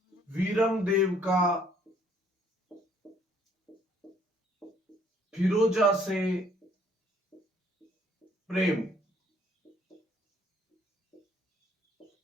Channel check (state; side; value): normal; both; correlation 0.62